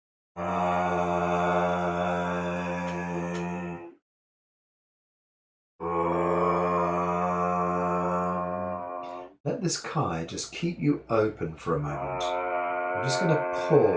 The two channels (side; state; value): both; identical; correlation 1.00